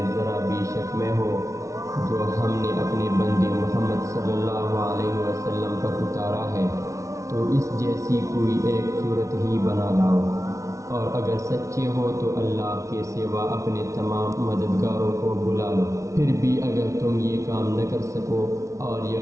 ذرا بھی شک میں ہو جو ہم نے اپنے بندے محمد صلی اللہ علیہ وسلم پر اتارا ہے، تو اس جیسی کوئی ایک صورت ہی بنا لاؤ، اور اگر سچے ہو تو اللہ کے سوا اپنے تمام مددگاروں کو بلا لو۔ پھر بھی اگر تم یہ کام نہ کر سکو اور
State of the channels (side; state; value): left; late; 0.15 ms